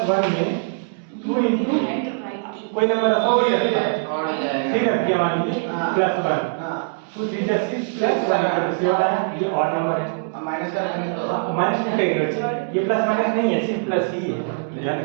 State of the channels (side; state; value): left; silent; digital silence